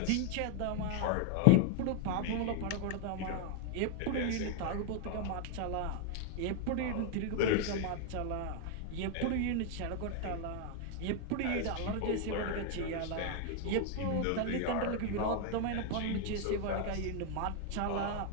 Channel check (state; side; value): different; both; correlation 0.01